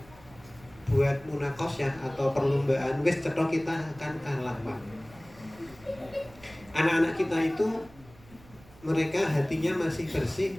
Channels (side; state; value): right; noise; rumble, 23 dB below the sound